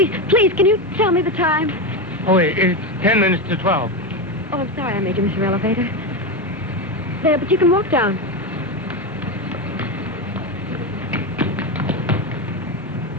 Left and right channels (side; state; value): both; normal; correlation 0.14